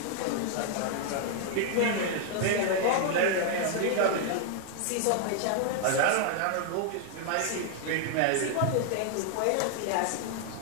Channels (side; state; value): both; different; correlation 0.00